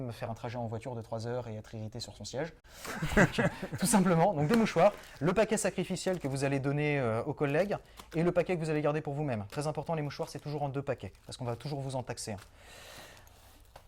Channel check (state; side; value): identical; both; correlation 1.00